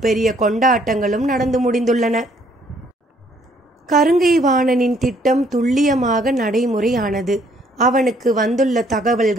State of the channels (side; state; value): both; normal; correlation 0.64